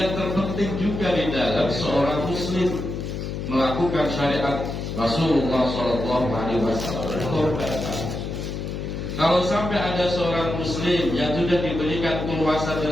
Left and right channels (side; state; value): left; noise; hum, 5 dB below the sound